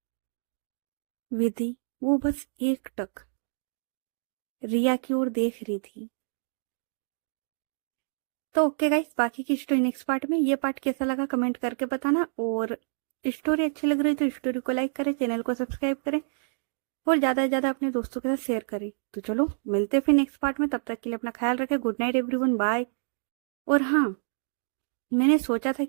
विधि वो बस एक टक रिया की ओर देख रही थी। तो ओके गाइस, बाकी की स्टोरी नेक्स्ट पार्ट में। ये पार्ट कैसा लगा कमेंट करके बताना। और स्टोरी अच्छी लग रही है तो स्टोरी को लाइक करें, चैनल को सब्सक्राइब करें और ज़्यादा से ज़्यादा अपने दोस्तों के साथ शेयर करें। तो चलो मिलते हैं फिर नेक्स्ट पार्ट में। तब तक के लिए अपना ख्याल रखें। Good night everyone, bye. और हाँ, मैंने सोचा था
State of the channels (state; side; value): silent; left; digital silence